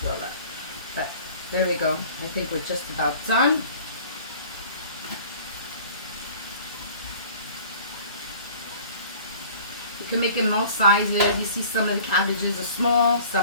up. But there we go. I think we're just about done. You can make it most sizes. You see some of the cabbages are small,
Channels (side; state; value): both; inverted; correlation -0.48